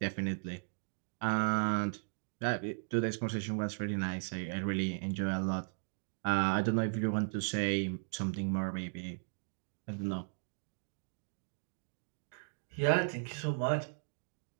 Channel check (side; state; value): left; silent; digital silence